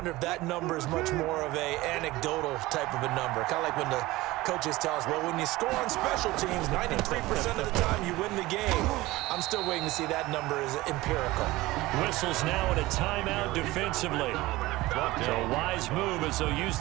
if that number is much more of a anecdotal type of a number. Kind of like when the coaches tell us, well, when you score on special teams, 93% of the time you win the game. I'm still waiting to see that number is empirical. Whistles now in a timeout defensively. So a wise move as they'll use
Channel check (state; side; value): quieter; left; 19.1 dB